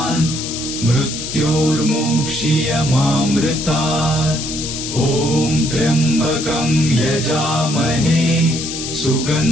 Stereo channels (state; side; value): noise; left; hiss, 6 dB below the sound